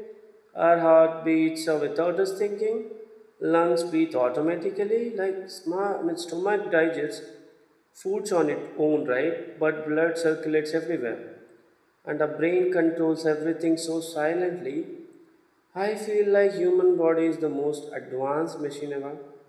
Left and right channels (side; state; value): both; identical; correlation 1.00